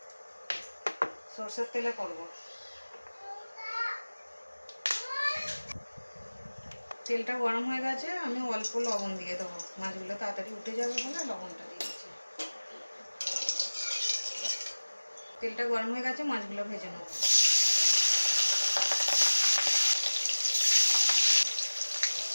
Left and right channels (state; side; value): inverted; both; correlation -1.00